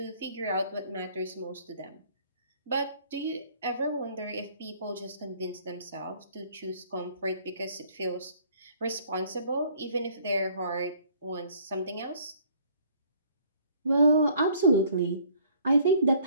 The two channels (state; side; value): inverted; both; correlation -0.58